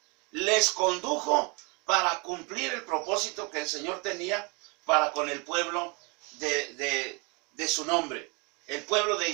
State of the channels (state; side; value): quieter; left; 29.6 dB